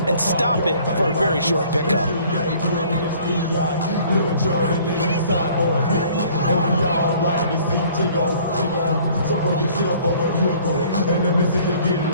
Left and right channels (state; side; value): inverted; both; correlation -0.55